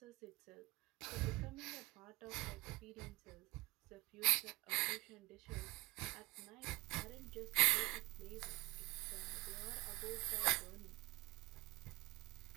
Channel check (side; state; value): left; quieter; 22.5 dB